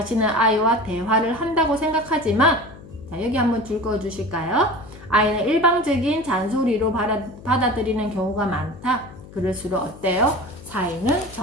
아이와 대화를 한다고 생각하지만, 자, 여기 한번 줄 그어 주실까요? 아이는 일방적인 잔소리로 받아들이는 경우가 많다. 그럴수록 어때요? 사이는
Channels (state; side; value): noise; left; hum, 18 dB below the sound